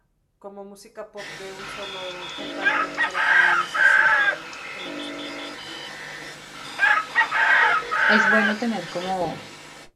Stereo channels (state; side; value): identical; both; correlation 1.00